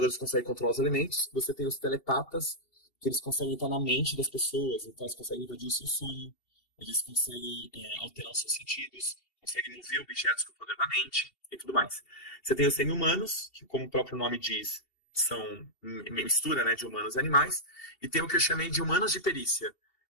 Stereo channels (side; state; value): right; late; 2.7 ms